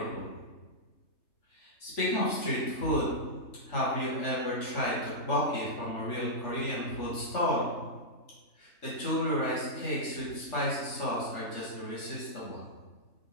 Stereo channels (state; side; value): late; right; 3.3 ms